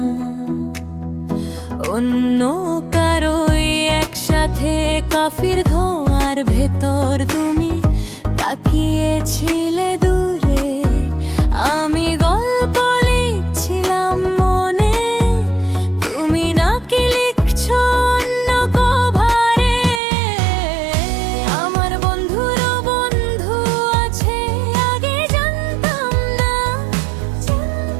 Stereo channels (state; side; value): drops out; left; at 20.0 s